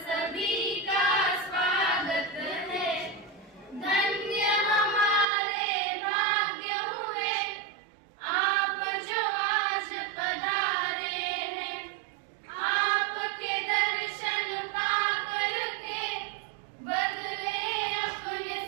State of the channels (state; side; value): drops out; left; at 5.2 s